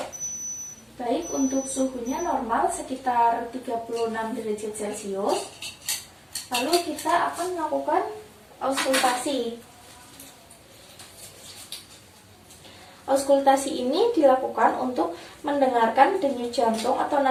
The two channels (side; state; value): both; identical; correlation 1.00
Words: Baik, untuk suhunya normal sekitar 36 derajat Celcius. Lalu kita akan melakukan auskultasi. Auskultasi ini dilakukan untuk mendengarkan denyut jantung atau